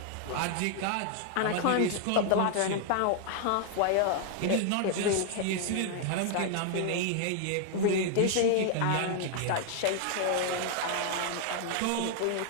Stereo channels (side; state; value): both; different; correlation 0.00